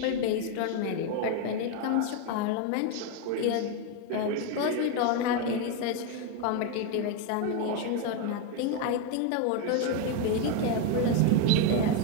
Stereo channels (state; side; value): different; both; correlation 0.02